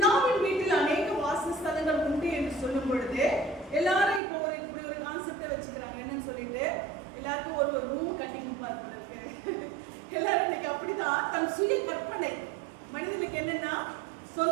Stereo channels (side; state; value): left; drops out; at 4.2 s